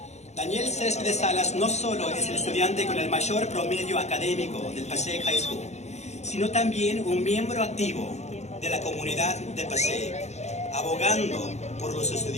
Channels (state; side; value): late; right; 0.32 ms